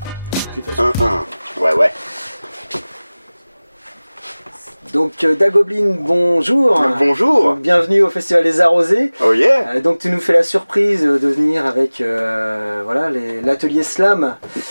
1-1. Ouais. Donc Dagoblin, bonjour. Bonjour. Bienvenue au Festival des Arrosés. Oh yeah. Donc tu nous fais la surprise de venir avec voilà, l'atelier Slam.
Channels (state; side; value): inverted; both; correlation -0.99